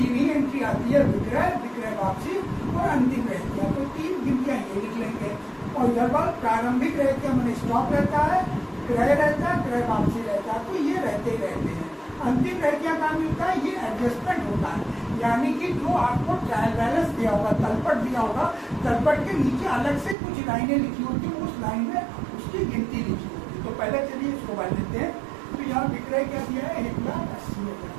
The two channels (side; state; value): left; drops out; at 20.2 s